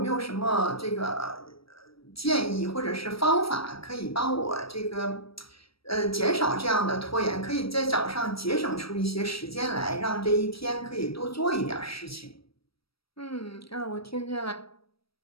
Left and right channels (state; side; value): late; right; 0.75 ms